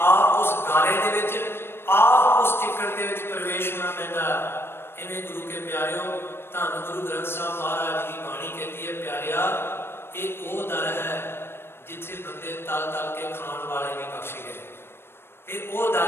ਆਪ ਉਸ ਗਾਰੇ ਦੇ ਵਿੱਚ, ਆਪ ਉਸ ਚਿੱਕੜ ਦੇ ਵਿੱਚ ਪ੍ਰਵੇਸ਼ ਹੋਣਾ ਪੈਂਦਾ। ਇਵੇਂ ਗੁਰੂ ਕੇ ਪਿਆਰਿਓ, ਧੰਨ ਗੁਰੂ ਗ੍ਰੰਥ ਸਾਹਿਬ ਮਹਾਰਾਜ ਦੀ ਬਾਣੀ ਕਹਿੰਦੀ ਹੈ, ਪਿਆਰਿਆ, ਇਹ ਉਹ ਦਰ ਹੈ ਜਿੱਥੇ ਬੰਦੇ ਤਲ ਤਲ ਕੇ ਖਾਣ ਵਾਲੇ ਵੀ ਬਖਸ਼ੇ ਗਏ। ਇਹ ਉਹ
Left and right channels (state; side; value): late; right; 0.11 ms